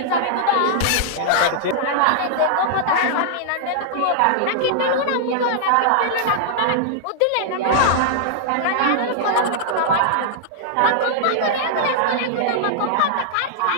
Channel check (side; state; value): both; different; correlation -0.01